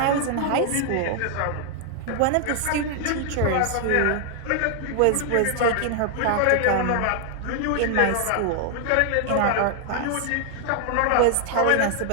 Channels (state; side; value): different; both; correlation 0.00